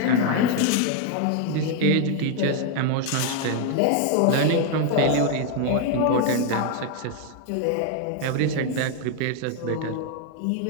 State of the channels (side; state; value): both; different; correlation 0.01